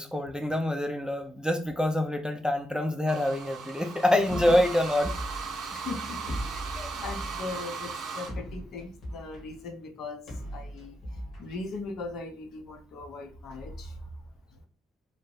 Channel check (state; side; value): normal; both; correlation 0.86